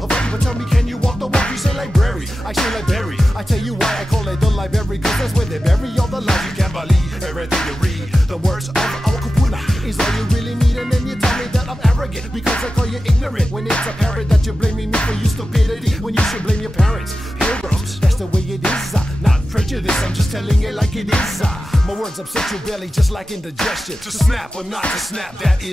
but tell me, can you walk the walk? You say library, I say library. I tell you why I call it the library, cause that's where they bury all the lies you can't believe. Everything you read, the words of our kupuna is all you really need, and then you tell me that I'm arrogant because I call you ignorant. When it's apparent that you're blaming me for your stupidity, when you should blame your parents. Pilgrims, that's the way it is. Not prejudice, I'm just telling it like it is. My words upset your belly just like indigestion. To snap or not to snap, that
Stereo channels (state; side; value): normal; both; correlation 0.93